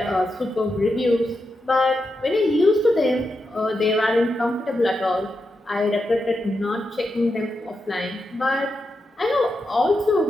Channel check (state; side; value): normal; both; correlation 0.87